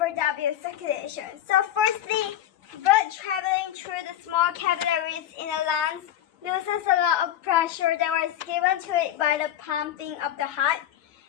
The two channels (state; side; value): quieter; right; 11.7 dB